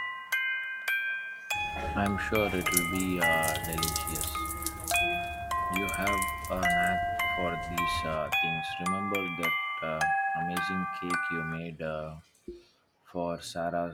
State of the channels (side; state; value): both; identical; correlation 1.00